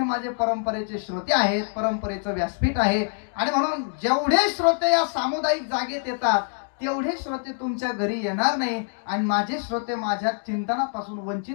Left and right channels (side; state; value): right; silent; 60 dB below the other